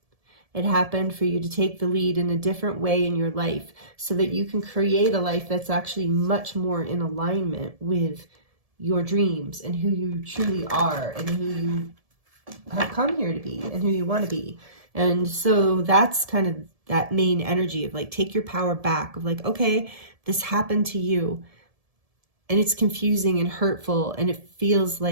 It happened for you to take the lead in a different way in your life so that you can create a life that's actually much more in alignment with your dreams and who you truly are and who you have come here to be and who you want to be. And so that's kind of that main energy of like, take your power back of like, okay, this happened to you and it's confusing and hurtful and it feels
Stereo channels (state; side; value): late; left; 1.7 ms